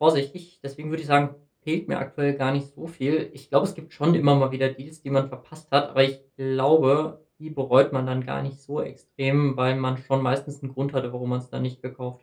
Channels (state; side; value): identical; both; correlation 1.00